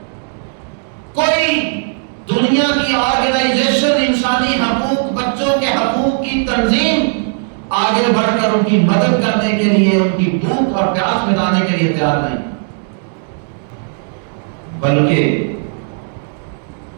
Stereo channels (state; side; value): silent; left; 60 dB below the other